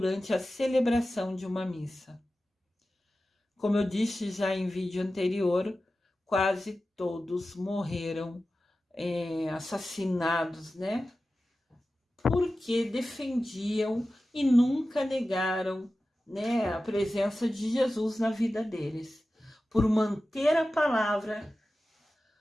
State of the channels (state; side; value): normal; both; correlation 0.94